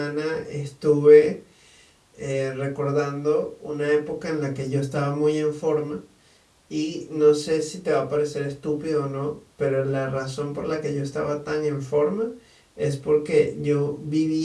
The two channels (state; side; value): identical; both; correlation 1.00